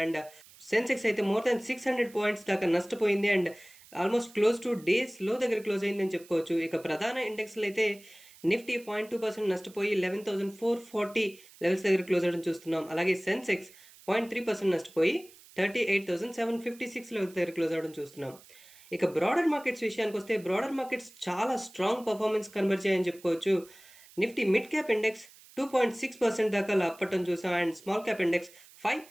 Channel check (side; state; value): right; noise; hiss, 23 dB below the sound